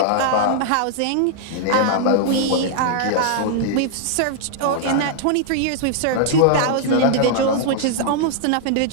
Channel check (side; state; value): both; different; correlation -0.01